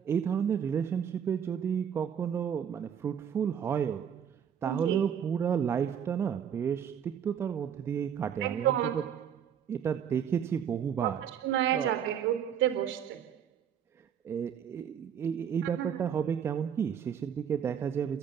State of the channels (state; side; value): quieter; left; 8.4 dB